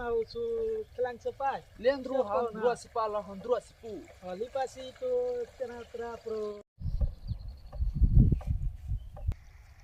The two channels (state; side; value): identical; both; correlation 1.00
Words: usu kelang sepai. Lendru handrua sipala handrua sipu. Lipas itu tena pro.